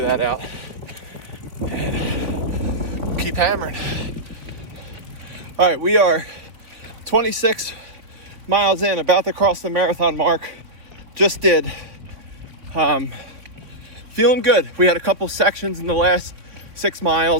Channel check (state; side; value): late; left; 3.6 ms